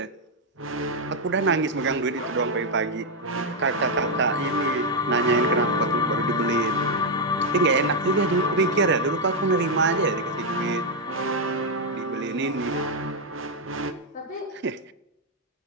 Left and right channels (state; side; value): normal; both; correlation 0.01